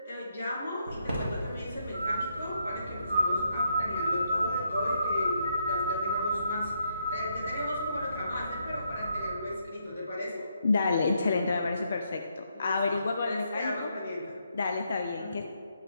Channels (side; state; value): both; inverted; correlation -0.77